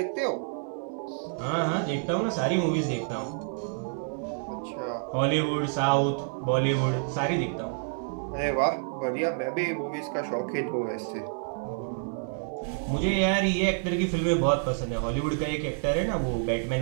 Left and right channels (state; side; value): silent; left; 59 dB below the other